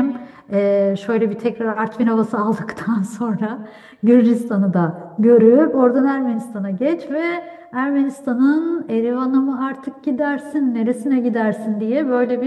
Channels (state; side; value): identical; both; correlation 1.00